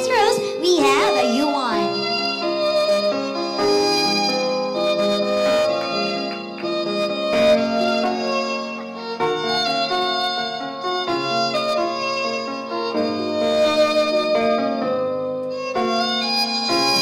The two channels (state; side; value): identical; both; correlation 1.00